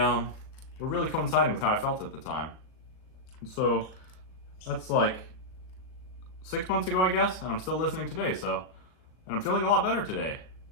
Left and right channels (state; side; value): late; right; 38 ms